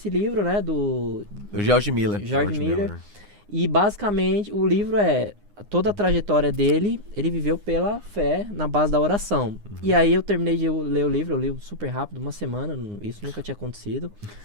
livro, né, do O George Miller. George Miller. E basicamente o livro toda a trajetória dele, ele viveu pela fé, na base da oração. E aí eu terminei de ler o livro, eu li super rápido, uma semana, isso nunca tinha acontecido.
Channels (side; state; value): left; late; 9.7 ms